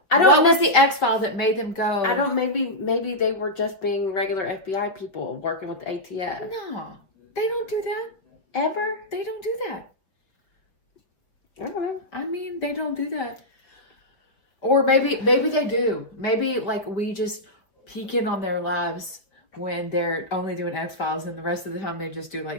what was the X-File that made them go? I don't. Maybe they were just being regular FBI people working with the ATF. No, they don't do that. Ever? They don't do that. Okay. I mean, they don't do that. Or maybe they do. Maybe like we just peek in on their lives when they're only doing X-Files, and the rest of the time they just do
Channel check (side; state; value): right; late; 5.1 ms